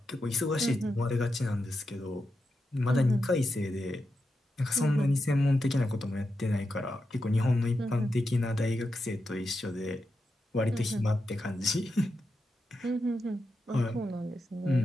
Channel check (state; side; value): normal; both; correlation 0.87